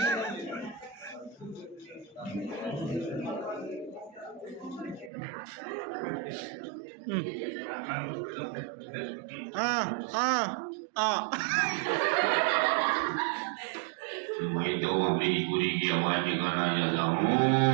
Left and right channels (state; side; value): drops out; left; at 5.1 s